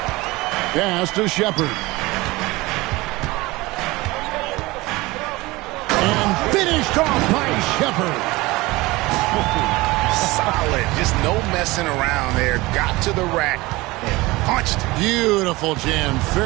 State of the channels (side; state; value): left; quieter; 21.2 dB